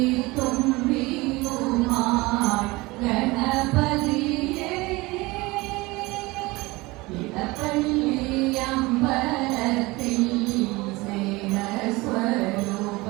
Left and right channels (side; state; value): left; quieter; 22.3 dB